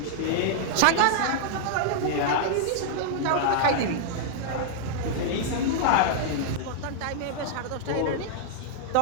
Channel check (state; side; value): different; both; correlation -0.01